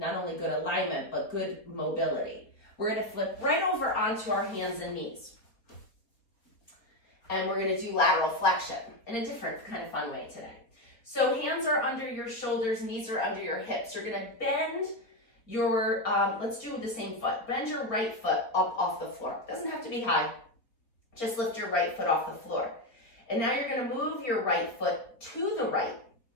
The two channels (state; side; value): late; right; 4.1 ms